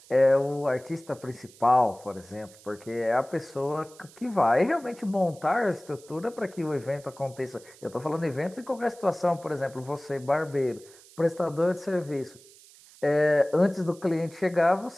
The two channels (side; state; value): right; noise; hiss, 23 dB below the sound